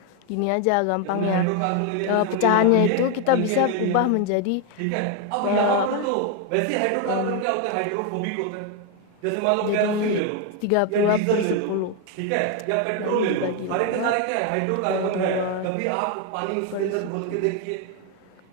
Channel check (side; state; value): both; different; correlation 0.01